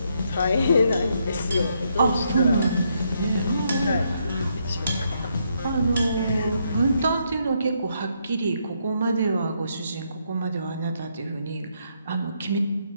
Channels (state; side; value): inverted; both; correlation -0.76